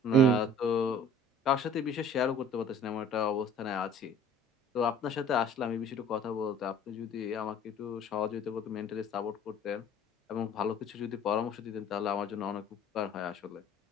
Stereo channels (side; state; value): both; normal; correlation 0.49